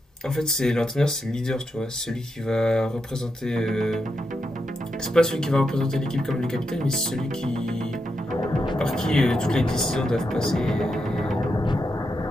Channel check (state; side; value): normal; both; correlation 0.84